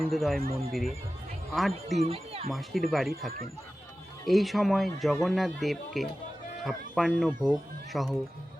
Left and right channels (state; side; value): normal; both; correlation 0.95